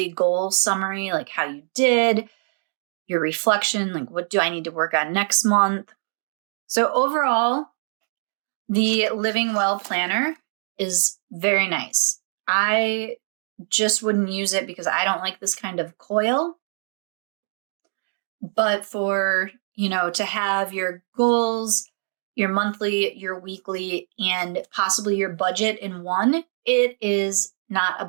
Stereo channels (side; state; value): left; silent; digital silence